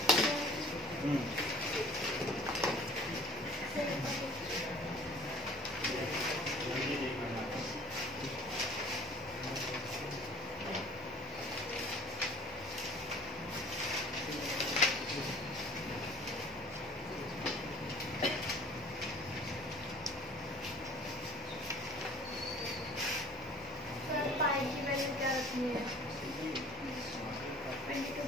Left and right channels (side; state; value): both; normal; correlation 0.49